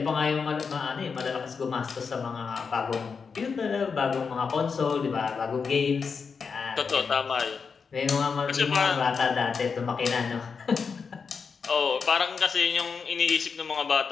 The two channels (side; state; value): right; quieter; 5.6 dB